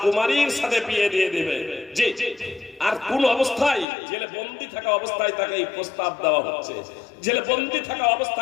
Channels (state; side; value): drops out; right; at 3.9 s